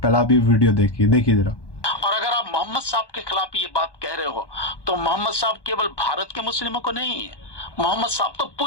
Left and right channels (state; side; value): late; right; 1.2 ms